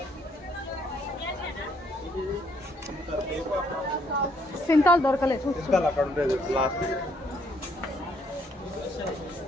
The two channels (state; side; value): normal; both; correlation 0.69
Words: సింతాలు దొరకలేదు. అక్కడ ఉండేది లాస్ట్.